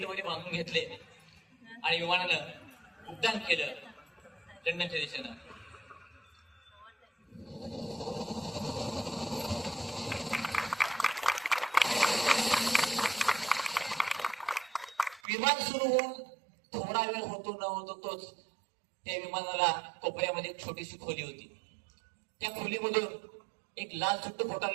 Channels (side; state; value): left; drops out; at 15.2 s